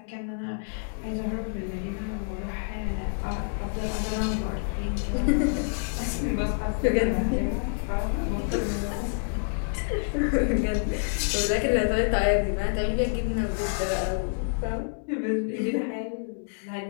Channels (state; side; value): silent; right; digital silence